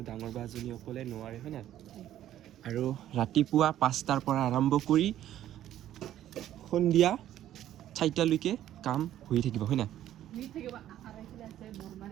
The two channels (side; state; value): left; quieter; 12.2 dB